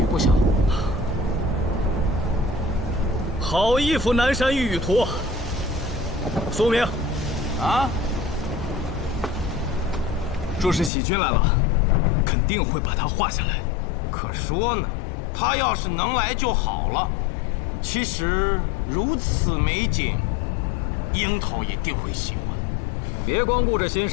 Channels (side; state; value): right; drops out; at 10.9 s